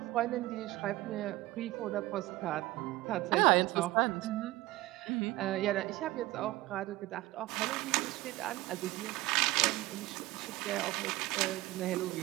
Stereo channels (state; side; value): quieter; left; 18.5 dB